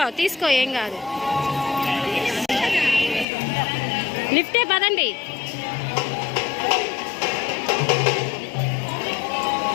తీసుకో ఏం కాదు. లిఫ్టే పదండి.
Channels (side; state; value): right; drops out; at 3.2 s